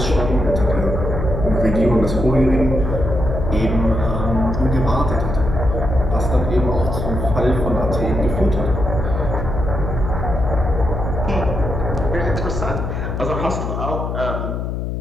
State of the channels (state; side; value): noise; left; hum, 3 dB below the sound